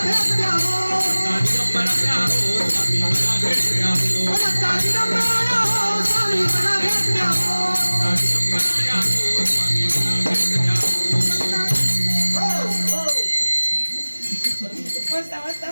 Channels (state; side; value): inverted; both; correlation -1.00